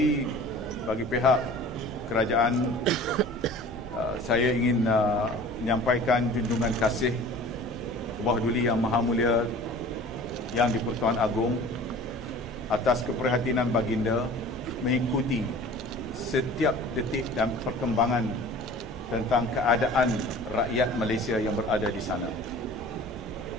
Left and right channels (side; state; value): both; normal; correlation 0.43